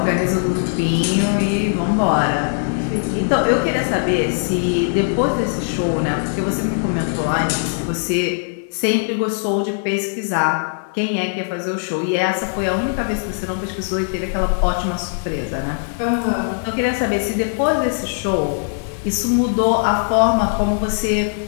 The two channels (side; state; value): right; silent; 66 dB below the other